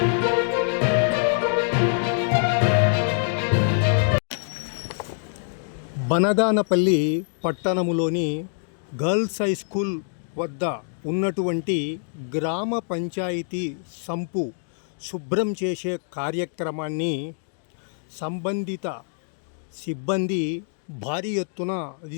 బనగానపల్లి పట్టణములోని గర్ల్స్ హై స్కూల్ వద్ద ఉన్నటువంటి గ్రామ పంచాయతీ సంపు శుభ్రం చేసే కార్యక్రమాన్ని సంబంధిత సిబ్బంది భారీ ఎత్తున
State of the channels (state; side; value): silent; right; digital silence